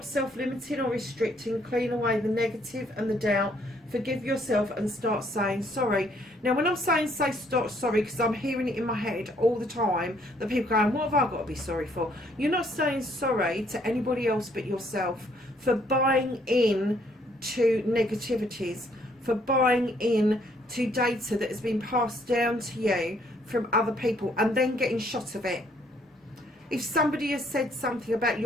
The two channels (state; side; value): normal; both; correlation 0.66